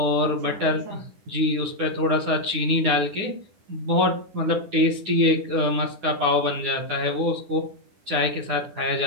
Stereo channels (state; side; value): late; left; 9.7 ms